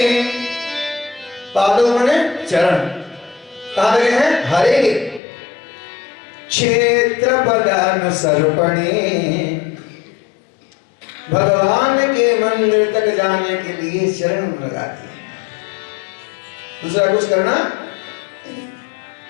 पादों माने चरण, कहाँ लगे हैं? हरे के। क्षेत्र पदानुसर्पणे, भगवान के मंदिर तक जाने के लिए चरण लगाती है। दूसरा कुछ करना।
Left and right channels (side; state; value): right; drops out; at 5.2 s